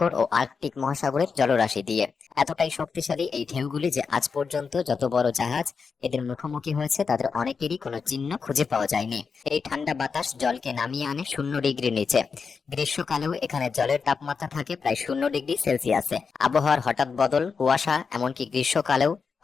ও আর্কটিক মহাসাগরের জলরাশি দিয়ে। এতটাই শক্তিশালী এই ঢেউগুলি যে আজ পর্যন্ত যত বড় জাহাজ এদের মুখোমুখি হয়েছে তাদের অনেকেরই কোনো চিহ্ন খুঁজে পাওয়া যায়নি। এই ঠান্ডা বাতাস জলকে নামিয়ে আনে 0 ডিগ্রি নিচে। গ্রীষ্মকালেও এখানে জলের তাপমাত্রা থাকে প্রায় 0 ডিগ্রি সেলসিয়াসে। আবহাওয়ার হঠাৎ বদল, কুয়াশা, এমনকি গ্রীষ্মকালেও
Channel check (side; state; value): right; quieter; 5.4 dB